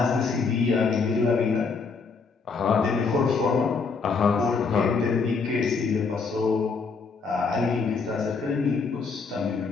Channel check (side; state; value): right; quieter; 4.8 dB